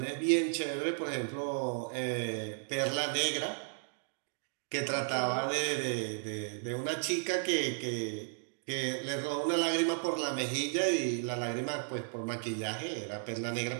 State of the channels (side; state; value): left; silent; digital silence